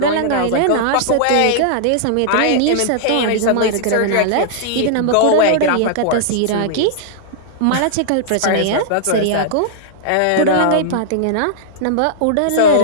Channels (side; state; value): both; different; correlation -0.01